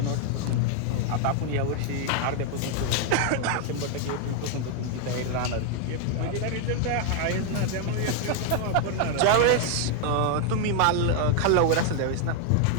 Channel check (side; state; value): both; different; correlation 0.00